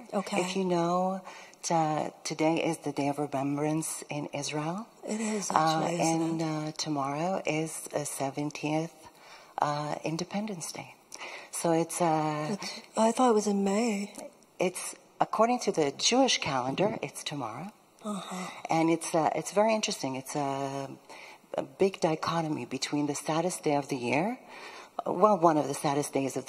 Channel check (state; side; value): identical; both; correlation 1.00